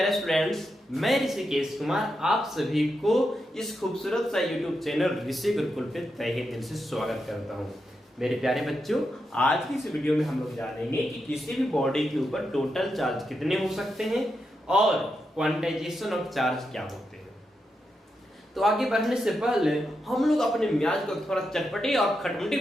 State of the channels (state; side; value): normal; both; correlation 0.85